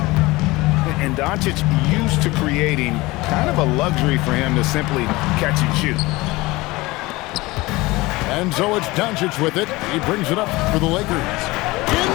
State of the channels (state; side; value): quieter; right; 21.2 dB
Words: And Doncic used to creating kind of a luxury for him to simply catch and shoot. And so it's Doncic with it. He brings it up for the Lakers.